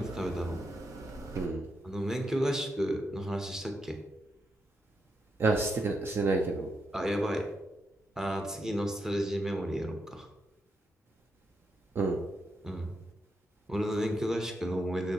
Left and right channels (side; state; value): both; normal; correlation 0.82